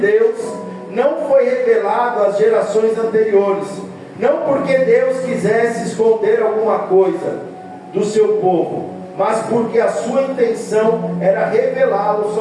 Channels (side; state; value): both; identical; correlation 1.00